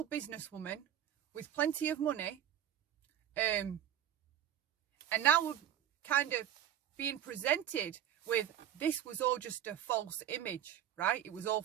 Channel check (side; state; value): left; quieter; 10.7 dB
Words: businesswoman with plenty of money. And now we're kind of being presented with, this was all just a false image, right? It was all